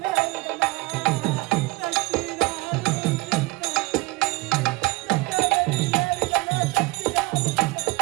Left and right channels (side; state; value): left; quieter; 23.2 dB